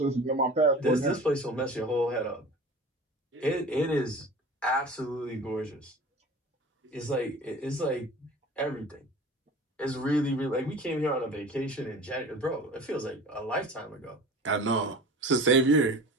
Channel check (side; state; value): both; normal; correlation 0.39